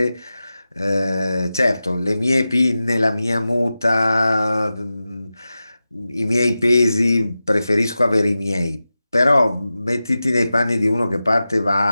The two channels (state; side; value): inverted; both; correlation -0.94